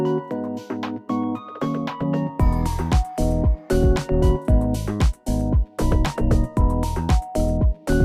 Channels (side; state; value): both; identical; correlation 1.00